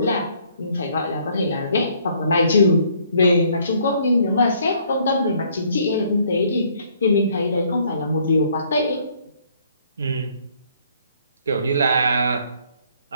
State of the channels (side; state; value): both; inverted; correlation -0.64